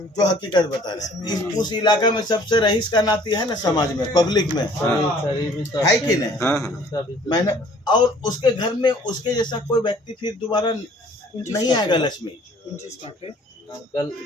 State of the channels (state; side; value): normal; both; correlation 0.55